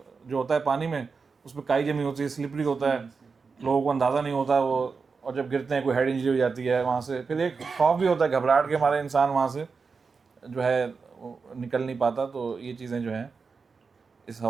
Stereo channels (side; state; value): left; quieter; 4.9 dB